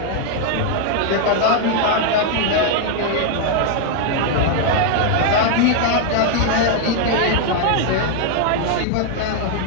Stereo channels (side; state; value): both; different; correlation 0.00